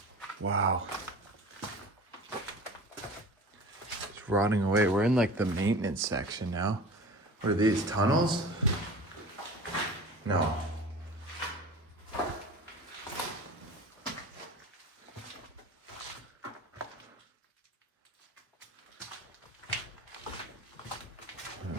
Wow. It's rotting away. We're in like the maintenance section now. What are these, tunnels? No.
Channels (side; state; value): both; normal; correlation 0.38